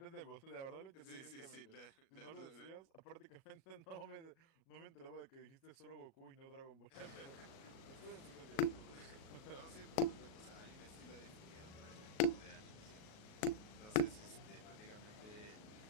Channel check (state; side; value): late; right; 38 ms